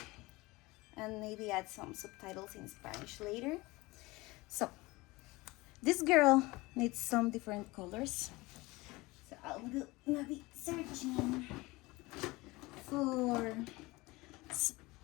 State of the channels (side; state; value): right; quieter; 21.9 dB